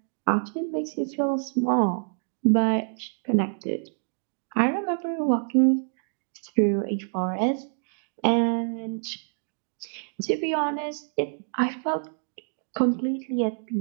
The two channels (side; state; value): left; silent; digital silence